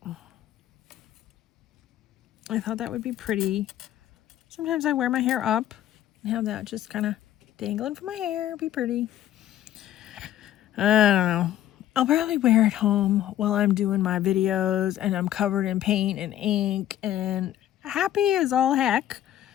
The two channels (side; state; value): right; quieter; 12.3 dB